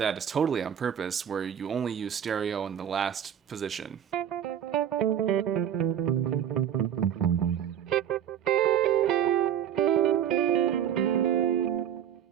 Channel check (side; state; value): left; quieter; 9.6 dB